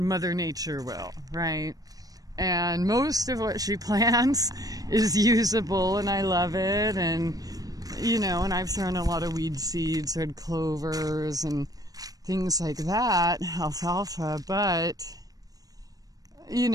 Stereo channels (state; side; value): late; left; 0.18 ms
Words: Mother Nature will, right? And most of what she plants is usable, and I love it. And, you know, and I've thrown a lot of weed seeds, red clovers, and things like that, alfalfa. But, you